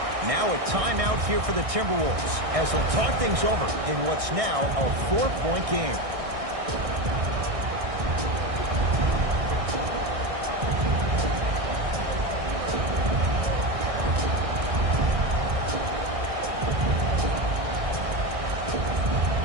Now a timeout here for the Timberwolves as they'll talk things over in what's now a 4-point game.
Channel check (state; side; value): late; left; 1.6 ms